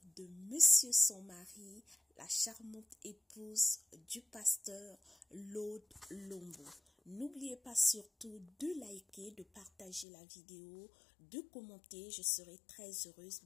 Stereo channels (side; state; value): right; drops out; at 10.1 s